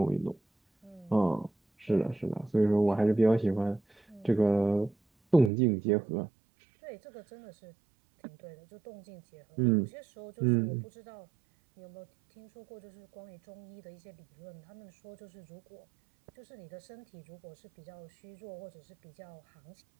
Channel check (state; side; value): drops out; left; at 5.5 s